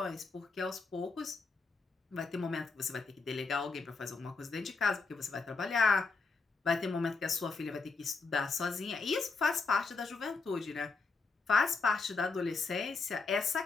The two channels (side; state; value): right; quieter; 4.2 dB